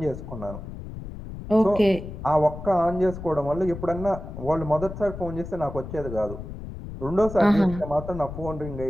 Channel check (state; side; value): noise; left; rumble, 10 dB below the sound